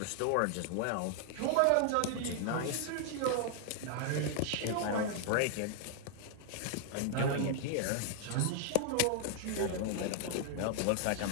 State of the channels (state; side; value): different; both; correlation 0.00